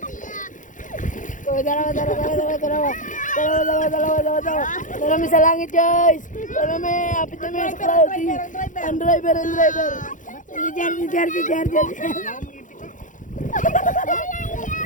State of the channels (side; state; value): right; late; 0.37 ms